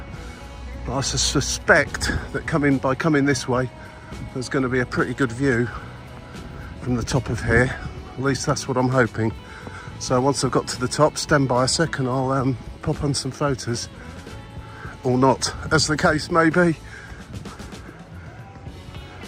But I suspect that by coming this way, there's going to be a pretty good view from the top of here. At least that's what I'm hoping. So once I've got to the top, stand by a sec and I'll pop on some photos. Or not, as the case may be.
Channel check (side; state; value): both; identical; correlation 1.00